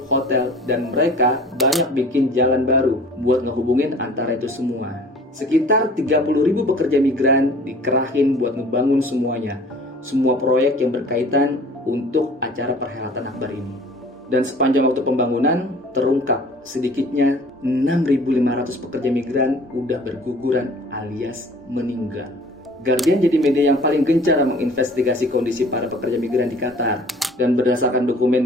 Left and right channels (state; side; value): normal; both; correlation 0.48